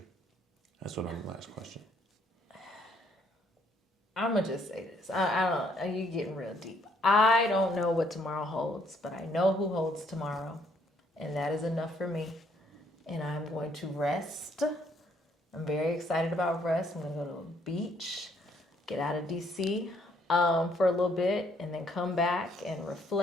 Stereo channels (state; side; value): normal; both; correlation 0.68